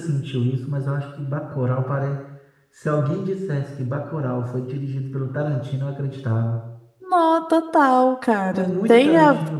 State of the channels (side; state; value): both; identical; correlation 1.00